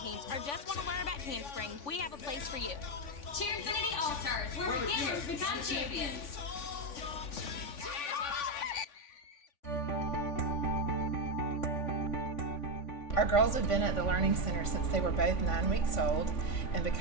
or just want to learn about handspring, we have a place for you. Cheerinfinity All-Stars, where beginners become champions. Our girls have been at the Learning Center since they were both 9 weeks old, and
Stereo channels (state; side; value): late; right; 3.5 ms